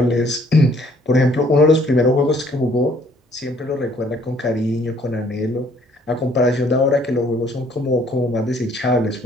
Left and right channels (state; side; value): normal; both; correlation 0.61